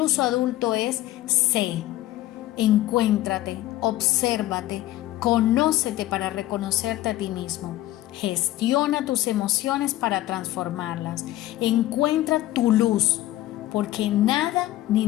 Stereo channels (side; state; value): right; quieter; 15.4 dB